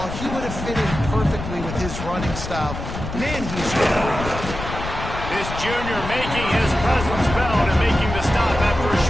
He would have fit in perfectly with his running style. Man, he's great. This junior making his presence felt and making the stop after a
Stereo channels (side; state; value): left; noise; rumble, 7 dB below the sound